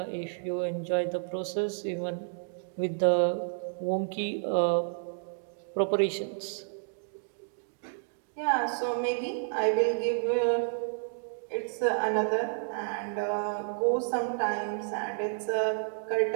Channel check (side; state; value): left; silent; digital silence